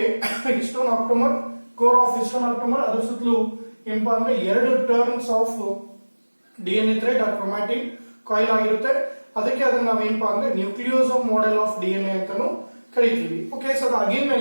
histone octamer, core of histone octamer, ಅದರ ಸುತ್ತಲೂ ಏನಪ್ಪಾ ಅಂದ್ರೆ ಎರಡು ಟರ್ನ್ಸ್ ಆಫ್ ಡಿಎನ್ಎ ಥ್ರೆಡ್ ಆ ಕ್ರೊಮ್ಯಾಟಿನ್ ಕಾಯಿಲ್ ಆಗಿರುತ್ತೆ. ಅದಕ್ಕೆ ಅದನ್ನ ನಾವೇನಪ್ಪಾ ಅಂದ್ರೆ ನ್ಯೂಕ್ಲಿಯೋಸೋಮ್ ಮಾಡೆಲ್ ಆಫ್ ಡಿಎನ್ಎ ಅಂತಾನು ಕರಿತೀವಿ. ಓಕೆ, ಸೊ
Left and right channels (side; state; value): both; inverted; correlation -1.00